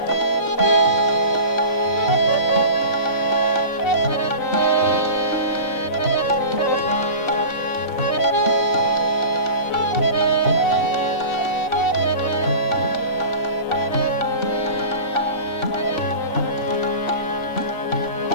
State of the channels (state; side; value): late; right; 4.0 ms